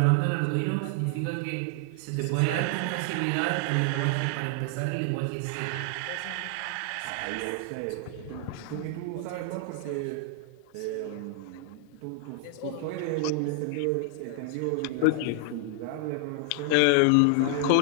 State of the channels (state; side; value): different; both; correlation 0.00